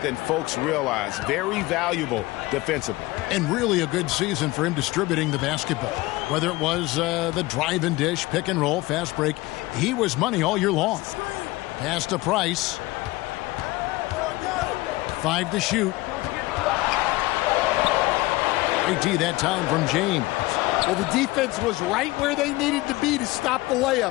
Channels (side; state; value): right; quieter; 20.2 dB